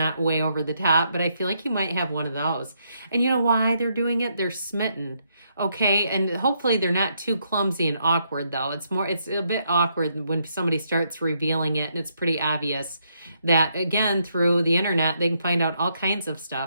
way over the top, but I feel like you might have one of those. And you know why they're doing it? They're smitten. Okay, and hopefully they're not too clumsy and awkward, though. It's a bit awkward when somebody starts revealing it, and it's pretty obvious that, again, through the internet, they can find out all kinds of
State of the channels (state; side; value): inverted; both; correlation -0.76